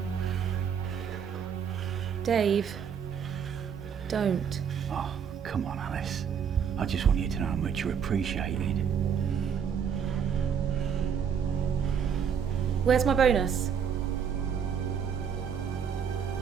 Dave, don't. Oh, come on, Alice. I just want you to know how much you're appreciated. Where's my bonus?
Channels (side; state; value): left; quieter; 7.5 dB